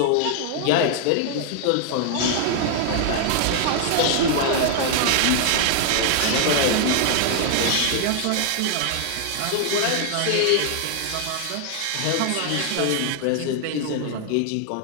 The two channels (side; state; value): both; different; correlation 0.00